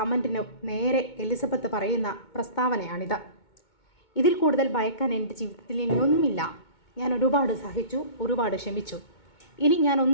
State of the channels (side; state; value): right; late; 2.2 ms